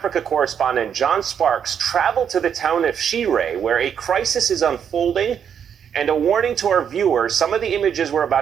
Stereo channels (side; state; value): left; quieter; 8.0 dB